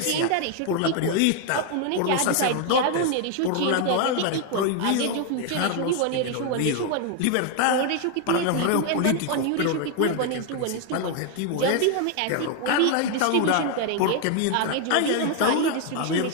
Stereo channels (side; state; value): both; different; correlation 0.01